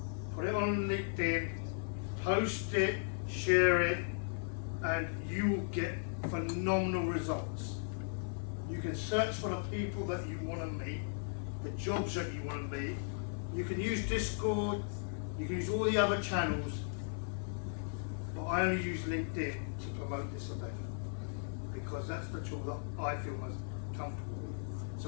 put it on LinkedIn, post it, share it, and you will get phenomenal results. You can search for the people that you want to meet, the jobs that you want to meet. You can use Discord, you can use all the other channels, but I only use LinkedIn to promote this event because that's the tool that I feel most comfortable with.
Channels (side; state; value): right; silent; 53 dB below the other